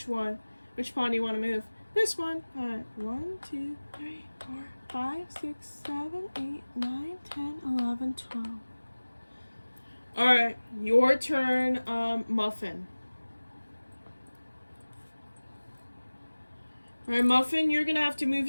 one? Which pawn do you want to move? This one. Alright, 1, 2, 3, 4, 5, 6, 7, 8, 9, 10, 11, 12. Alright, your turn, Muffin. Alright, Muffin, you're gonna have to move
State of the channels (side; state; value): both; inverted; correlation -1.00